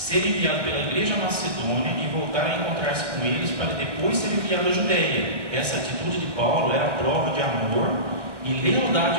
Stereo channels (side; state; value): left; late; 1.1 ms